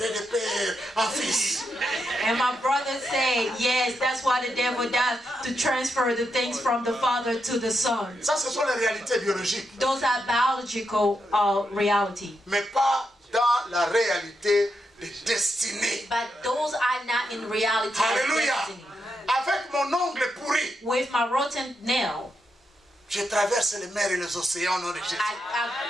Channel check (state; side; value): normal; both; correlation 0.84